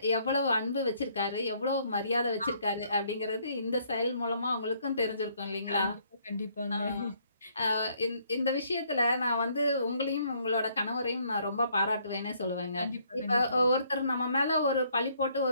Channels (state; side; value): inverted; both; correlation -0.67